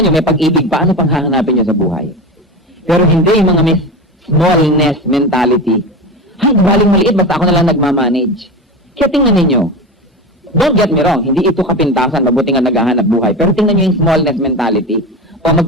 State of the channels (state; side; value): normal; both; correlation 0.24